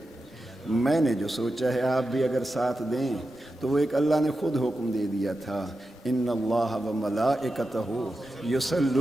میں نے جو سوچا ہے آپ بھی اگر ساتھ دیں تو وہ ایک اللہ نے خود حکم دے دیا تھا, ان اللہ و ملائکتہ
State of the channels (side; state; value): both; normal; correlation 0.91